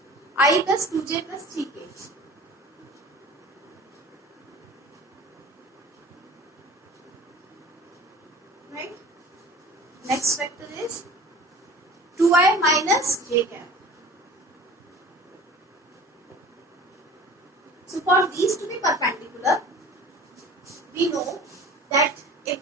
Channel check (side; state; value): both; normal; correlation 0.43